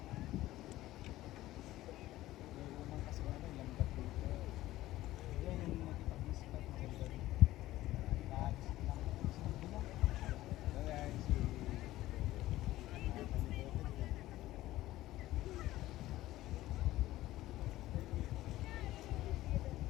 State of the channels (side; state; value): right; quieter; 15.9 dB